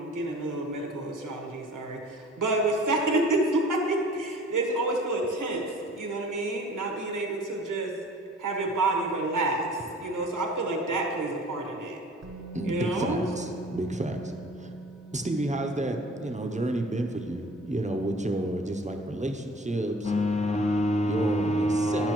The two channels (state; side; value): normal; both; correlation 0.48